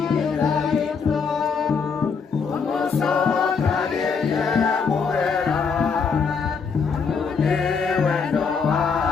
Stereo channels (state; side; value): quieter; right; 5.6 dB